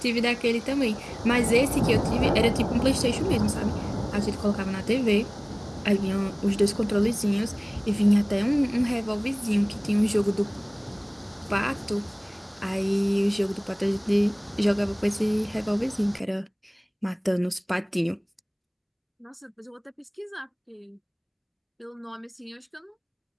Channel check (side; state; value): both; identical; correlation 1.00